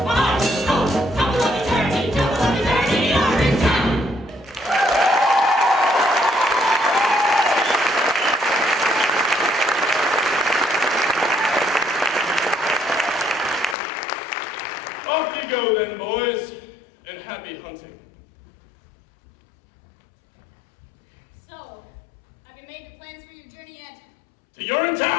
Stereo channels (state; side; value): drops out; right; at 13.8 s